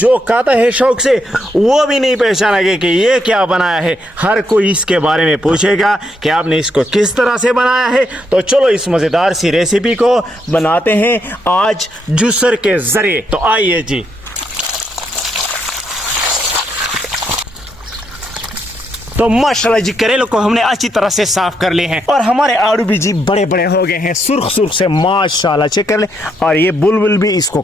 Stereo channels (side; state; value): both; normal; correlation 0.77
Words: खाता है शौक से वो भी नहीं पहचानेगा कि ये क्या बनाया है। हर कोई इसके बारे में पूछेगा कि आपने इसको किस तरह से बनाया है। तो चलो इस मजेदार सी रेसिपी को बनाते हैं आज जूसर के जरिए। तो आइए जी। तो माशाल्लाह जी करेलों को हमने अच्छी तरह से साफ कर लिए हैं और हमारे आलू भी जी बड़े बड़े हो गए हैं, सुर्ख सुर्ख से माशाल्लाह। चेक कर ले। और ये बुलबुल भी इसको